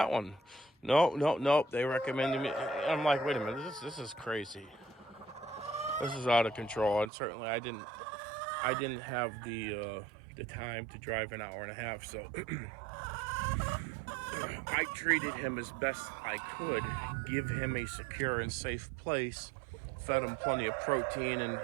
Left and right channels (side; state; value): left; drops out; at 7.1 s